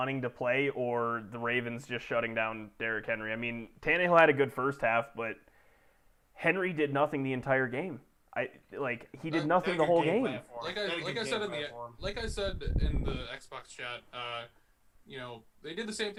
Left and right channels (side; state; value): both; identical; correlation 1.00